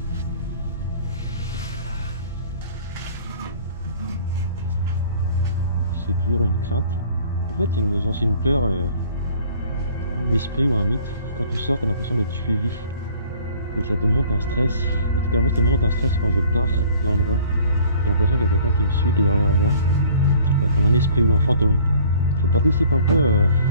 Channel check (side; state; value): both; inverted; correlation -0.53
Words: C'est toujours une crainte. En fait, c'est une peur d'esprit ou un mythe. Quand tu sors, tu as l'impression d'être suivi. Et ça te monte un stress. En tout cas, moi, ça me monte un stress quand je pars de l'endroit. J'ai l'impression qu'il y a quelqu'un qui me suit, qui est derrière moi. Je sais pas, comme un esprit ou un fantôme. Ça participe un peu